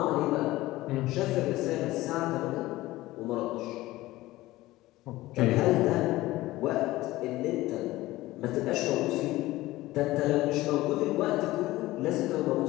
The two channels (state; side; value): quieter; right; 17.8 dB